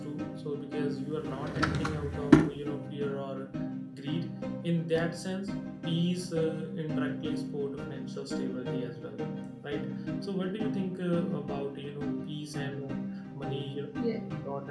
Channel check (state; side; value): identical; both; correlation 1.00